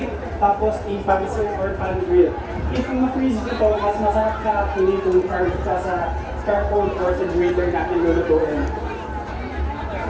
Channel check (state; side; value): identical; both; correlation 1.00